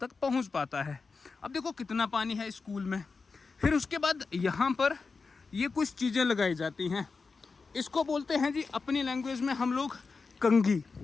पहुँच पाता है। अब देखो कितना पानी है स्कूल में। फिर उसके बाद यहाँ पर ये कुछ चीज़ें लगाई जाती हैं, इसको बोलते हैं जी अपनी लैंग्वेज में हम लोग कंघी।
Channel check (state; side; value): quieter; right; 4.5 dB